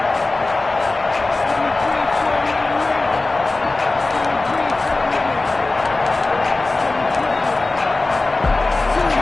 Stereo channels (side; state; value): right; quieter; 3.2 dB